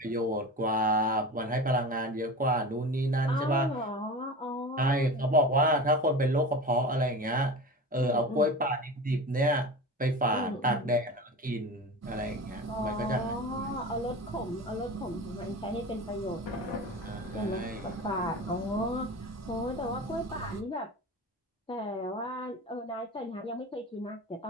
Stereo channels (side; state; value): both; normal; correlation 0.31